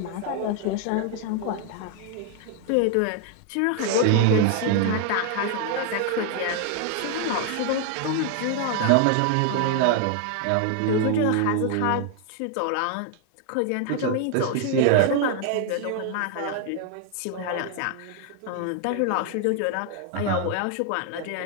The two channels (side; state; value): both; different; correlation 0.00